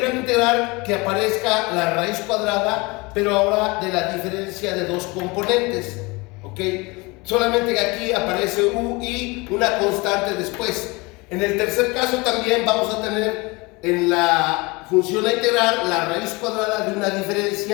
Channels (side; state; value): right; quieter; 25.4 dB